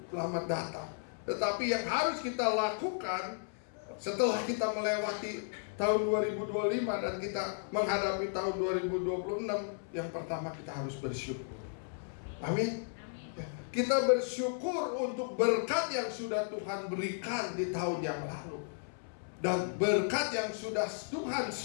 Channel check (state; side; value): silent; right; 55 dB below the other